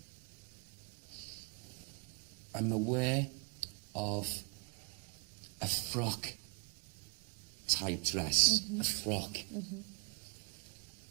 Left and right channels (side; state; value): left; quieter; 34.2 dB